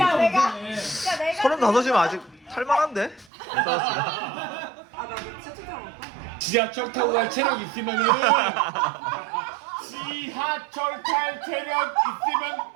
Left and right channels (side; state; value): left; drops out; at 3.2 s